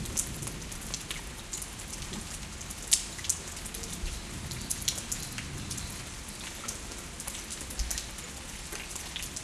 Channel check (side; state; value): both; identical; correlation 1.00